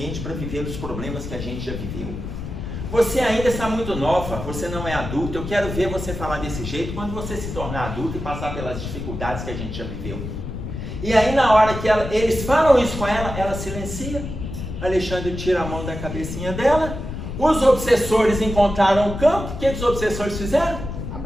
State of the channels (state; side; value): noise; left; rumble, 7 dB below the sound